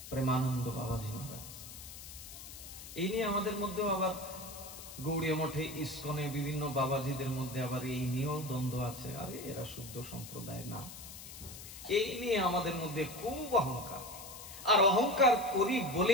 প্রেমানন্দ বাবাজি মহারাজ। এই নিয়ে আমাদের মধ্যেও আবার গৌড়ীয় মঠে, ইস্কনে, বিভিন্ন বাবাজিদের মধ্যে আবার এই নিয়েও দ্বন্দ্ব আছে। আরে এরা শুদ্ধ সম্প্রদায় না, এই নিয়ে আমাদের মধ্যে খুব অহংকার। আর অহংকার করি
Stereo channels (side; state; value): left; noise; hiss, 13 dB below the sound